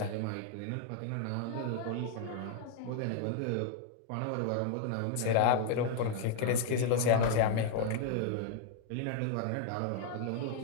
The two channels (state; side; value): different; both; correlation 0.00